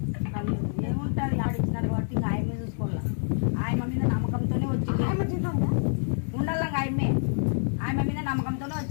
ఏముంటుంది ఆడిచ్చినారు కాబట్టి ఇంకా ఆయమ్మే చూసుకోవాలా. ఆయమ్మ మీద నమ్మకంతోనే వచ్చింది. ఉండాలి ఆయమ్మ మీద నమ్మకంతోనే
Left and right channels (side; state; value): right; silent; 60 dB below the other